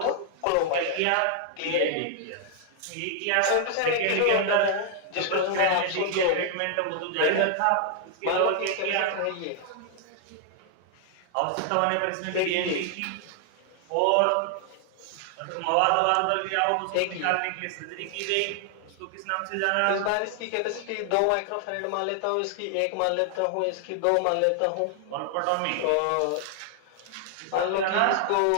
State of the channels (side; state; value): both; different; correlation 0.00